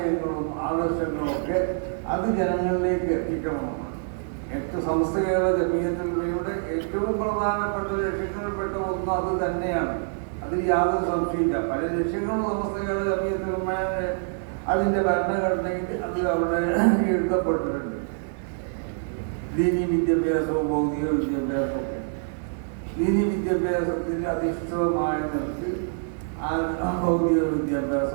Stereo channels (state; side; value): silent; left; digital silence